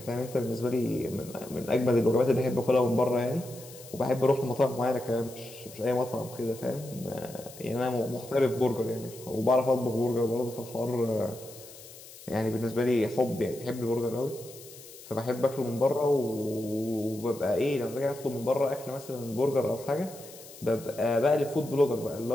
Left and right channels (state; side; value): noise; left; hiss, 18 dB below the sound